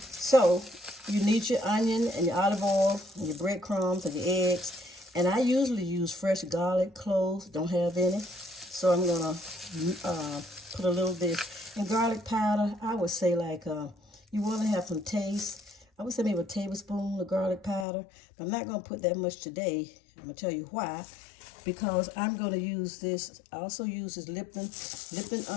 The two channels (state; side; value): drops out; right; at 17.9 s